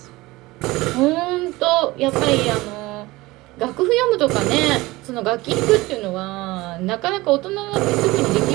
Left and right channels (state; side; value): quieter; left; 20.3 dB